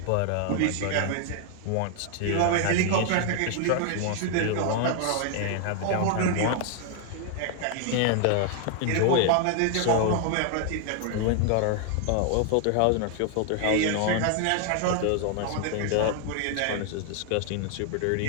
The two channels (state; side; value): different; both; correlation 0.00